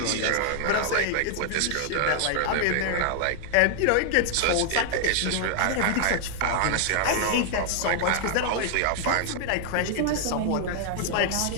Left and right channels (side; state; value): both; different; correlation 0.00